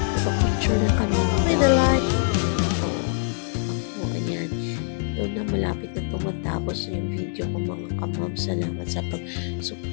Picture na kami. May the light. Ayan. Doon na malapit na tumatapos yung video ko mga kamam. Salamat sa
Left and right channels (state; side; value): silent; right; digital silence